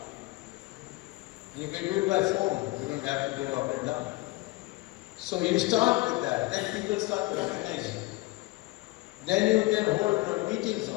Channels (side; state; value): right; quieter; 21.0 dB